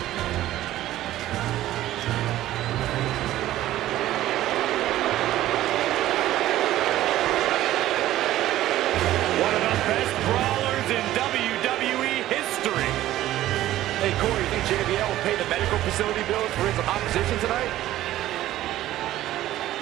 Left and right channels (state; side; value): quieter; left; 14.3 dB